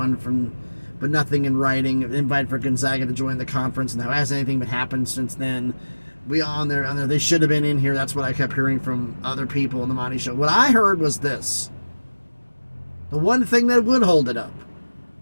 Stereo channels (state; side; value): inverted; both; correlation -1.00